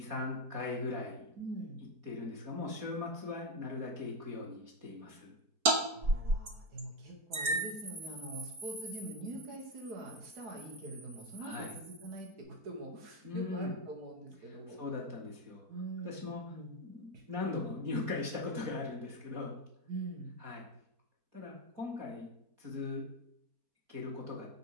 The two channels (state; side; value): late; left; 4.5 ms